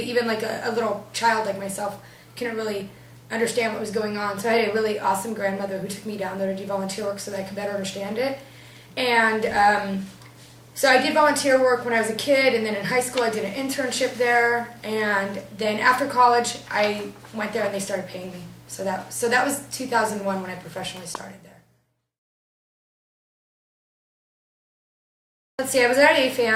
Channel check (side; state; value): both; identical; correlation 1.00